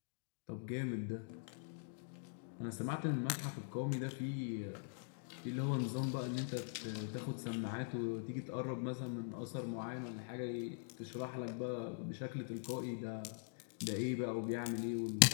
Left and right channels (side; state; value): right; silent; digital silence